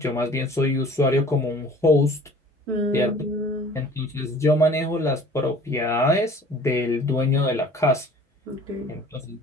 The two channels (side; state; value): both; normal; correlation 0.49